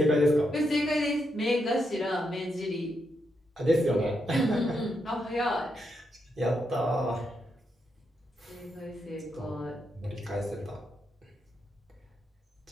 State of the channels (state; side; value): normal; both; correlation 0.82